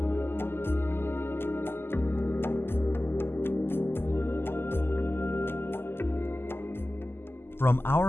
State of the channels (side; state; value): right; late; 0.11 ms